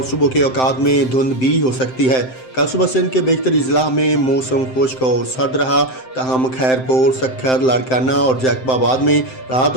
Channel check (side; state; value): right; late; 7.7 ms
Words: صبح کے اوقات میں دھند بھی ہو سکتی ہے۔ کل صبح سندھ کے بیشتر اضلاع میں موسم خشک اور سرد رہا، تاہم خیرپور، سکھر، لاڑکانہ اور جیکب آباد میں رات